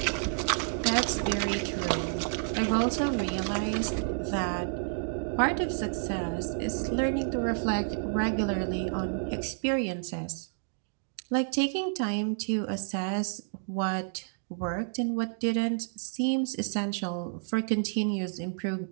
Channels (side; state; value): left; silent; digital silence